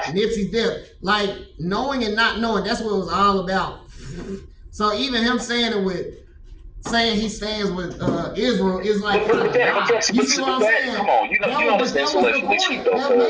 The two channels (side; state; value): both; identical; correlation 1.00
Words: Nipsey's death, like knowing and not knowing, that's what it was all about. So even him saying he stands with Israel is like, you see what I'm saying? Come on, you know it's intellectually cheap though,